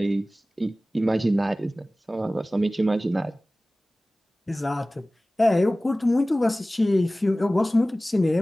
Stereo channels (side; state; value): both; normal; correlation 0.97